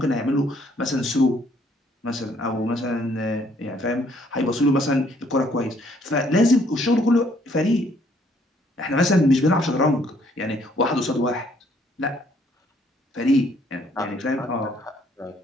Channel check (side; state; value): both; normal; correlation 0.65